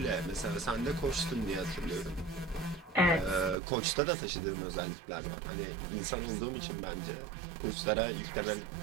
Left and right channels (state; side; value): drops out; left; at 3.6 s